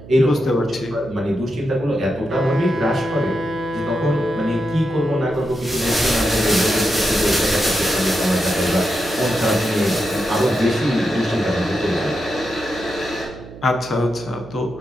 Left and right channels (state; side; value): noise; right; hum, 16 dB below the sound